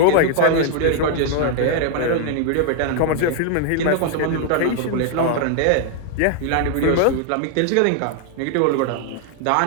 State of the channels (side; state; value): both; different; correlation 0.00